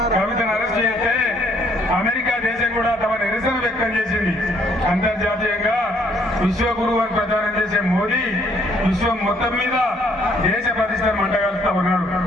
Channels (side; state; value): both; normal; correlation 0.66